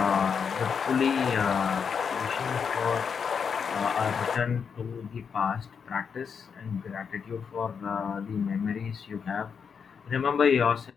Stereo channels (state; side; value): quieter; right; 6.4 dB